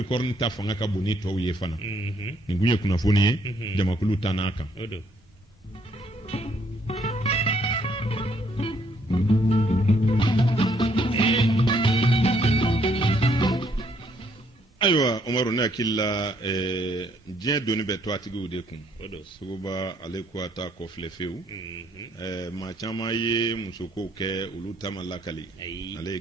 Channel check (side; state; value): both; normal; correlation 0.68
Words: ta fanga ka bon ni tɔw ye fana nin kun ye kunnafoni ye jamakulu ta n'a kan. Ayiwa Umaru ne hakili la diɲɛ doni bɛ to a tigiw de kun Suguba ale ko a ta kɔfilɛ fewu maa caman ye musokow kɛ olu ta ma lakali ale ye